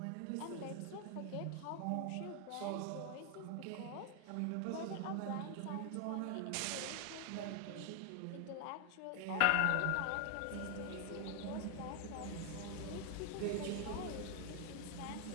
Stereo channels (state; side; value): different; both; correlation 0.00